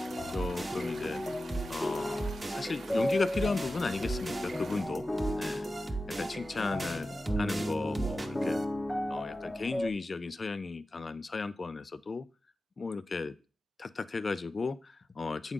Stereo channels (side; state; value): both; normal; correlation 0.94